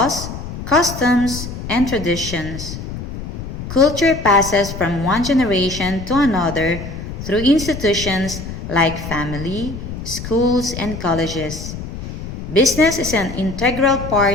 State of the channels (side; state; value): left; noise; rumble, 8 dB below the sound